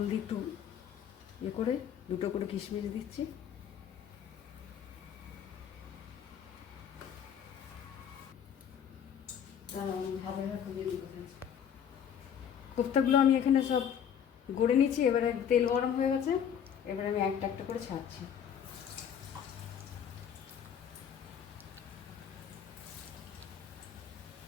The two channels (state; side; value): quieter; right; 8.5 dB